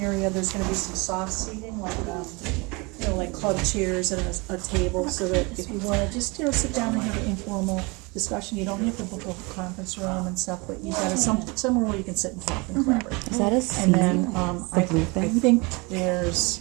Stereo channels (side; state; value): left; quieter; 27.5 dB